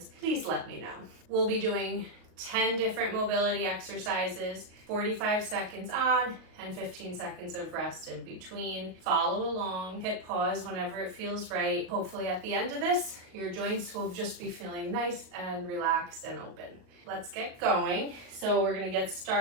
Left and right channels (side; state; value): left; late; 38 ms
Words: please let me know. We'll be doing 10 different mobility exercises, 45 seconds on and 15 seconds of rest in between. Follow along, hit pause whenever it feels right. Hopefully at the end of this, your joints will just be feeling nice and relaxed and open. Let's get going. So we're gonna get